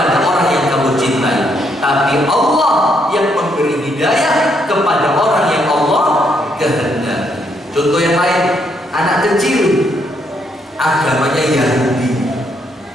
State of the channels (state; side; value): normal; both; correlation 0.74